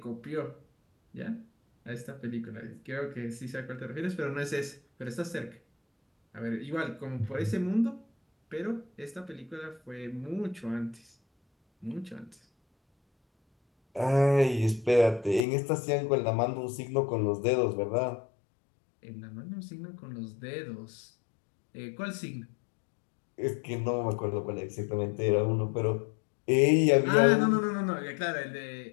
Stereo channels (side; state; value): right; drops out; at 15.5 s